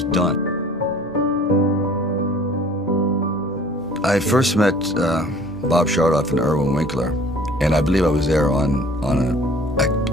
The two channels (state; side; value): normal; both; correlation 0.50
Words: done. I first met Bob Chardoff and Irwin Winkler, and I believe I was there on